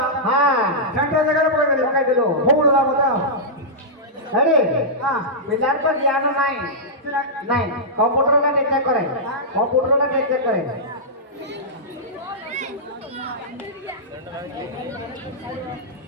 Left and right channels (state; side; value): normal; both; correlation -0.12